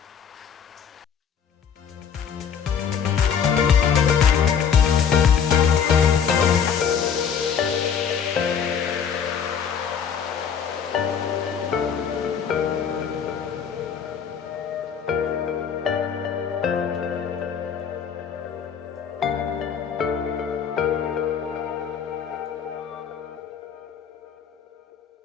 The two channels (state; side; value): quieter; right; 7.4 dB